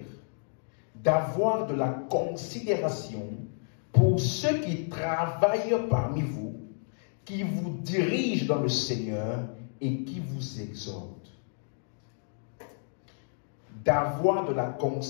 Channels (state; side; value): silent; right; digital silence